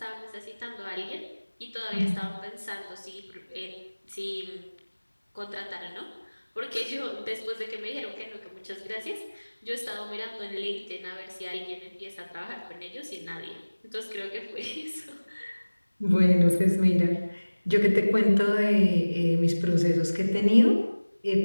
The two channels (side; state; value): both; inverted; correlation -1.00